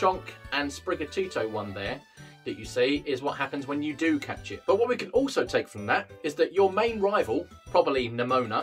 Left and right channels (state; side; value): identical; both; correlation 1.00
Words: and Sprigatito one there that you see is what happens when you do catch it. But what we can also take from that is that your main rival, probably